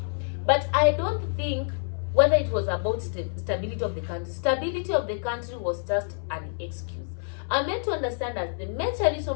But I don't think whether it was about stability of the country. Stability of the country was just an excuse. I'm meant to understand that the major reason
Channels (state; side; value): silent; right; 60 dB below the other